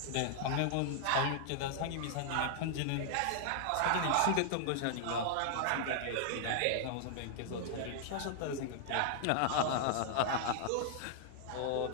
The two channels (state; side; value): different; both; correlation -0.01